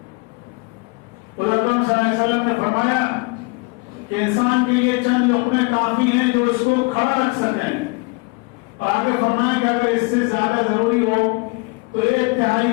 اور اکرم صلی اللہ علیہ وسلم نے فرمایا کہ انسان کے لیے چند لقمے کافی ہیں جو اس کو کھڑا رکھ سکیں. اور آگے فرمائیں کہ اگر اس سے زیادہ ضروری ہو تو 1/3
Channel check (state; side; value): quieter; right; 28.2 dB